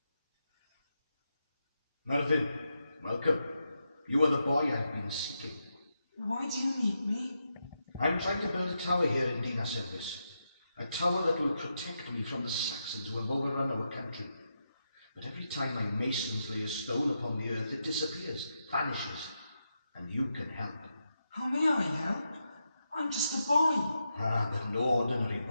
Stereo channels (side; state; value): both; inverted; correlation -0.85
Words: Merlin, welcome. You are the boy I've been seeking. Why do you need me? I'm trying to build a tower here in Dinas Elvis. A tower that will protect me from the Saxons who have overrun our country. But every time my masons lay a stone upon the earth, it disappears, vanishes, and you can help. How may I help? I'm just a boy. Ah, but no ordinary